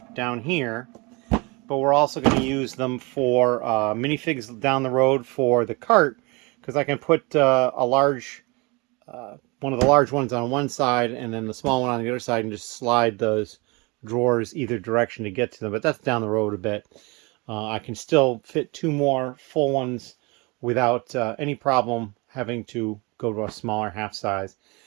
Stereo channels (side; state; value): left; quieter; 27.4 dB